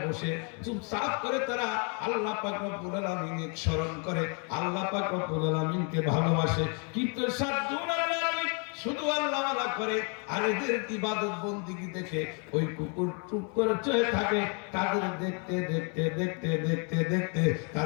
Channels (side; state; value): right; quieter; 37.0 dB